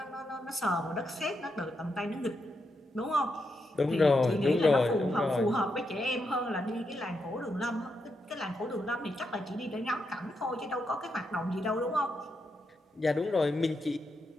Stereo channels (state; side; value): normal; both; correlation 0.83